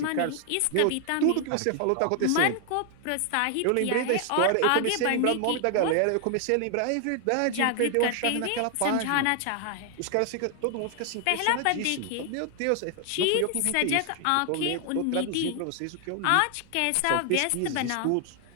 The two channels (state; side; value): different; both; correlation 0.00